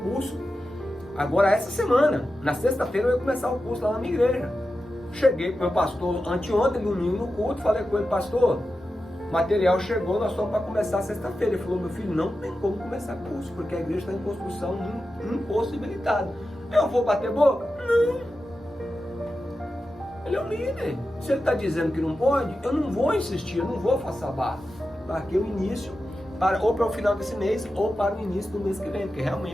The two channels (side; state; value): both; normal; correlation 0.91